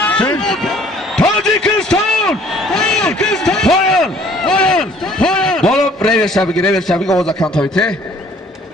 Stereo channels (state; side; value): normal; both; correlation 0.56